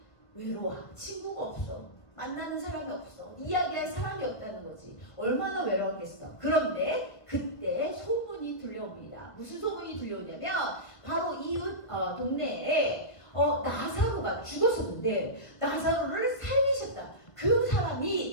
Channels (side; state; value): right; late; 1.3 ms